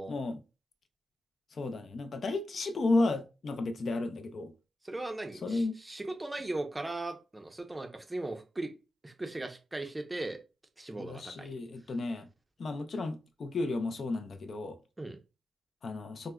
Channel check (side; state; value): both; normal; correlation 0.91